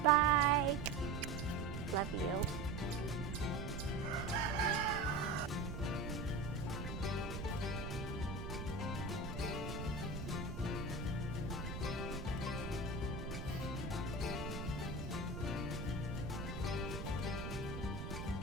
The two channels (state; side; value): noise; right; rumble, 5 dB below the sound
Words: Bye. Love you.